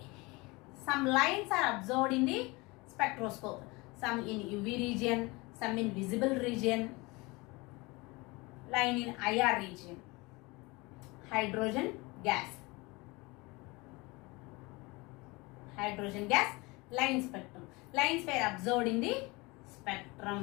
Some lines are observed in the spectroscope. Some in UV region, some in visible region, line in IR region. Hydrogen gas line spectrum. Lines were observed in the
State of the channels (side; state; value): right; quieter; 24.6 dB